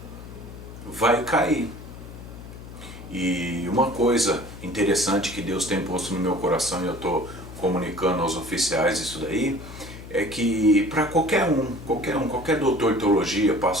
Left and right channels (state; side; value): noise; left; hum, 14 dB below the sound